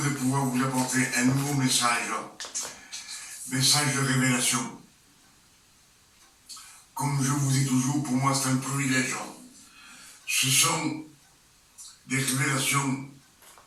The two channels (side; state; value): both; identical; correlation 1.00